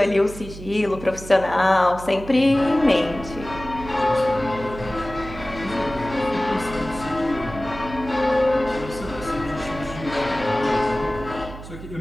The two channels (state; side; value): noise; right; hum, 13 dB below the sound